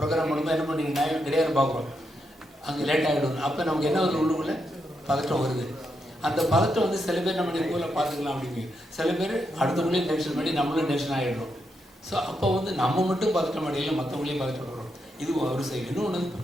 பண்ணும்போது என்ன பண்ணீங்கன்னா கிடையாது பார்க்குறோம், அங்கே லேட் ஆகிடும். அப்போ நமக்கு என்ன ஒரு உள்ளுக்குள்ளே பதட்டம் வருது. அந்த பதட்டம் வந்து சில பேர் நம்ம ஸ்கூலில் பார்த்துக்கலாம் அப்படிங்க, சில பேர் அடுத்தவங்களையும் டென்ஷன் பண்ணி நம்மளும் டென்ஷன் ஆகிடுறோம். ஸோ அப்போ வந்து நம்ம மட்டும் பதட்டம் அடையில மற்றவங்களையும் பதட்டப்படுறோம். இது ஒரு சைடு. இன்னொன்று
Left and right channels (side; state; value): both; normal; correlation 0.82